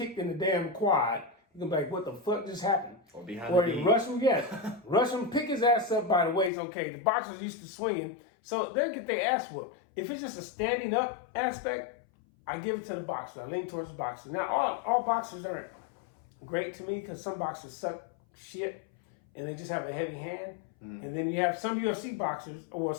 in the damn quad. He gonna be like, what the fuck just happened? Or behind or the knee. Rush him, yes. Rush him, pick his ass up by the waist, okay. The boxers used to swinging, so they'll get their ass whooped. If it's just a standing up aspect, I give it to the boxer. I lean towards the boxer. Now, all boxers aren't great to me because some boxers suck shit and they just have a heavy hand. Mm-hmm. And then you have some UFC boxers or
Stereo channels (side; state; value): right; drops out; at 6.5 s